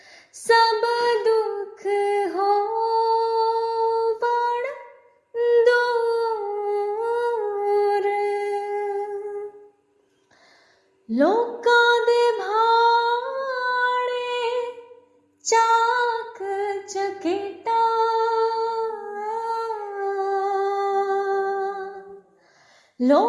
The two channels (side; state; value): both; identical; correlation 1.00